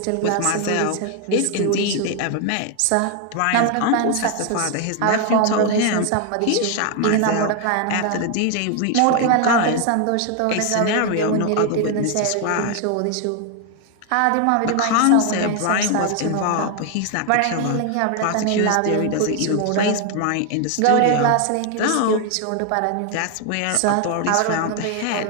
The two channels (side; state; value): both; different; correlation 0.00